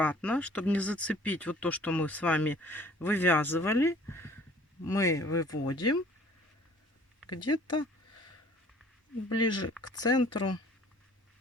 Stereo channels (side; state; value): both; normal; correlation 0.53